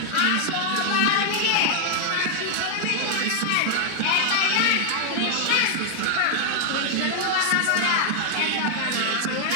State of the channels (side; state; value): both; different; correlation 0.00